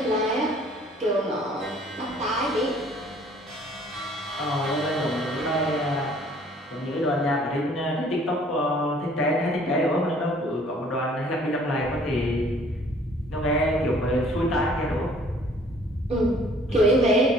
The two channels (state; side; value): normal; both; correlation 0.56